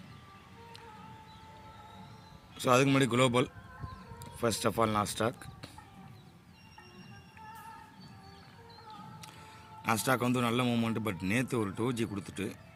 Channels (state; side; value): identical; both; correlation 1.00